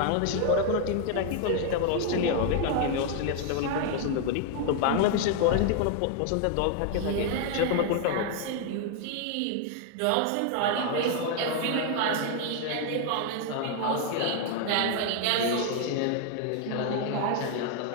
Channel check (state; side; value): different; both; correlation 0.00